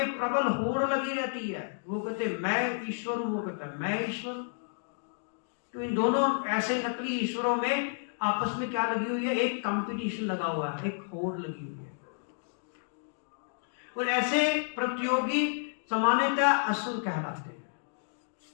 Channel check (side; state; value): right; silent; digital silence